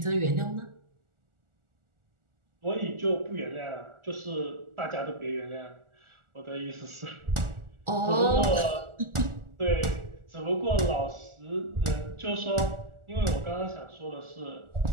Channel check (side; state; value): left; late; 1.4 ms